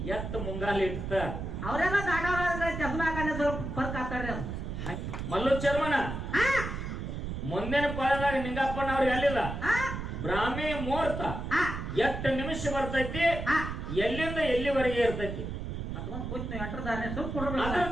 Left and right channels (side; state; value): right; noise; rumble, 5 dB below the sound